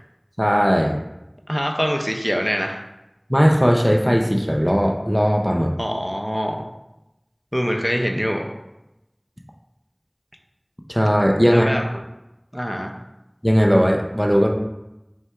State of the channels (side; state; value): both; identical; correlation 1.00